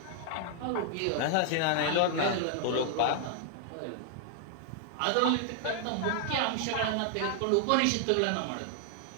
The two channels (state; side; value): different; both; correlation 0.00